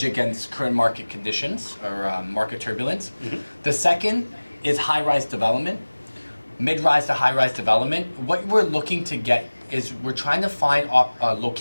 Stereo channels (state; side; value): inverted; both; correlation -1.00